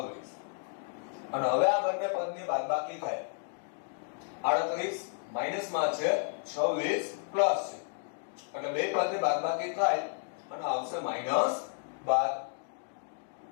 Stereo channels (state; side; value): silent; right; 56 dB below the other